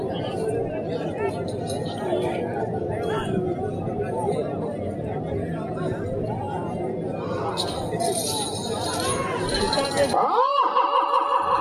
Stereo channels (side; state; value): both; identical; correlation 1.00